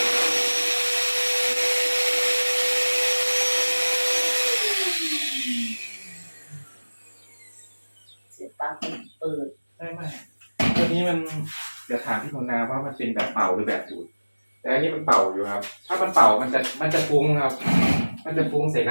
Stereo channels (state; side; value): inverted; both; correlation -1.00